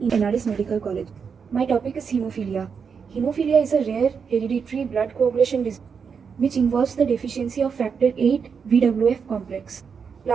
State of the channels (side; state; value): left; quieter; 6.2 dB